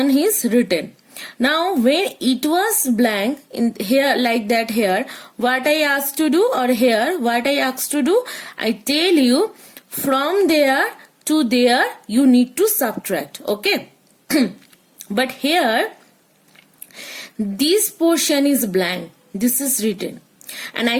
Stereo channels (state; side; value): identical; both; correlation 1.00